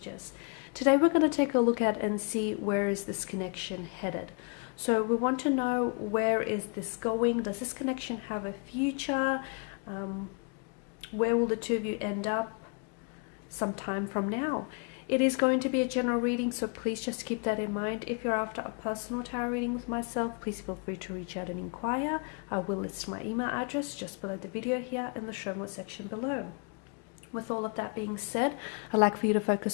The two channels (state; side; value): quieter; right; 35.9 dB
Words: Today we're going to take a look at and see where is this connection headed. So we want to know, where is this going? Does this connection have a future? Where will the two of you end up sometime from now? It is going to be a general reading, so please just keep that in mind. If you're after a personal tarot reading with myself, please feel free to reach out and inquire. I will list my email address just below the video here in the show more section below. With all of that being said, I'd like for you to